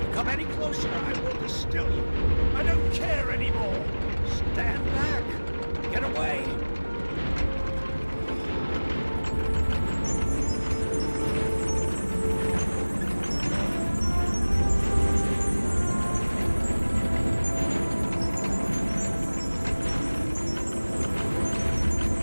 you come any closer, I will distill you. I don't care anymore. Stand back. Get away.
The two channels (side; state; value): both; inverted; correlation -1.00